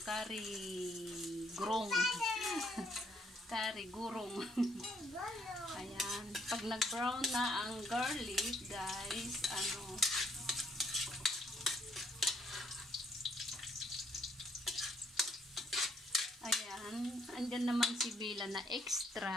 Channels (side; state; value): both; normal; correlation 0.68